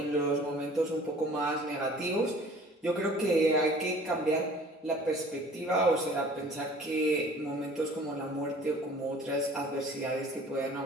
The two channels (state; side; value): normal; both; correlation 0.49